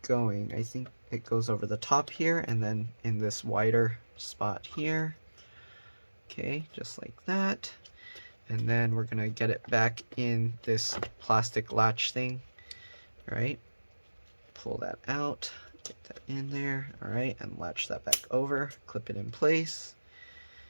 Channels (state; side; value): inverted; both; correlation -1.00